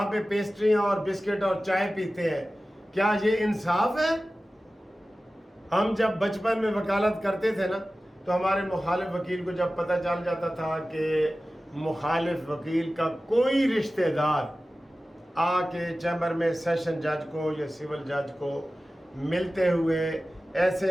پہ پیسٹریاں اور بسکٹ اور چائے پیتے ہیں۔ کیا یہ انصاف ہے؟ ہم جب بچپن میں وکالت کرتے تھے نا تو ہمارے مخالف وکیل کو جب پتہ چل جاتا تھا کہ مخالف وکیل کا کوئی رشتہ دار آ کے چیمبر میں سیشن جج کو یا سول جج کو ملتے ہوئے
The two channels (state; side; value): normal; both; correlation 0.96